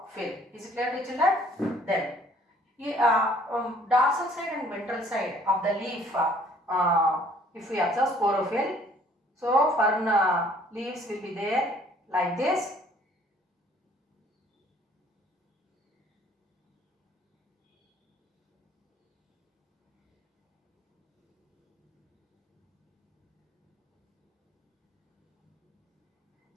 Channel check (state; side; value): normal; both; correlation 0.58